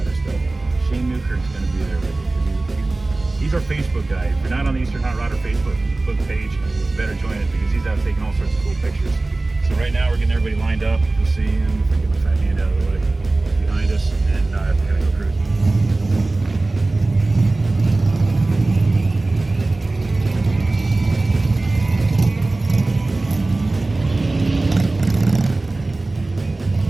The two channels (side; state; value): left; quieter; 3.1 dB